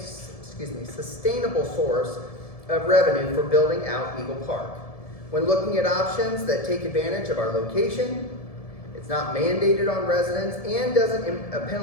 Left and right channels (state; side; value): late; right; 1.7 ms